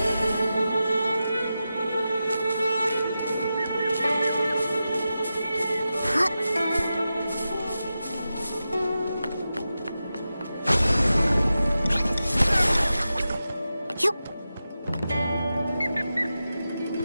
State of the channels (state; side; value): inverted; both; correlation -0.92